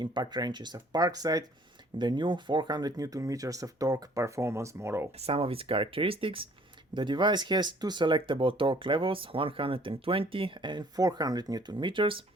wrenches of Parkside, the new 400 Newton meters of torque performance model. Some of its characteristics: the device has two selectable torque levels, 120 and 400 Newton meters.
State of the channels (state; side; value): normal; both; correlation 0.57